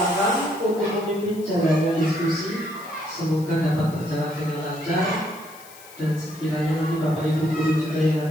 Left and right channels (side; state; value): left; noise; hiss, 20 dB below the sound